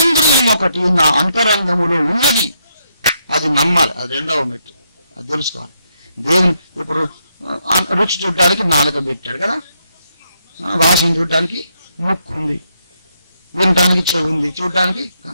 ఒకటి నా అంతరంగములో ఉన్నది, అది నమ్మాలి. అది రెండవ మెట్టు, అది తెలుసుకోవాలి. దేవుని ఇప్పుడు రుచి చూడడానికి నాలుక పెట్టాడు కదా, వాసన చూడడానికి ముక్కు ఉంది, వినటానికి చెవి ఉంది, చూడడానికి.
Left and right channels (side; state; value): both; inverted; correlation -0.78